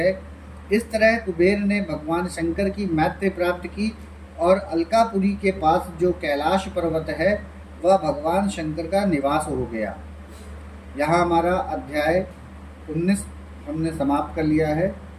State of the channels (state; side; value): identical; both; correlation 1.00